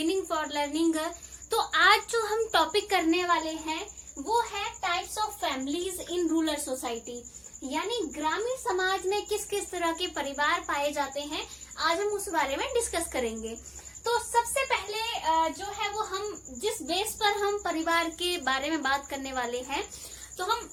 for learning. तो आज जो हम टॉपिक करने वाले हैं वो है types of families in rural society, यानी ग्रामीण समाज में किस किस तरह के परिवार पाए जाते हैं। आज हम उस बारे में डिस्कस करेंगे। तो सबसे पहले जो है वो हम जिस बेस पर हम परिवार के बारे में बात करने वाले हैं, तो हम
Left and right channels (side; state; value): both; identical; correlation 1.00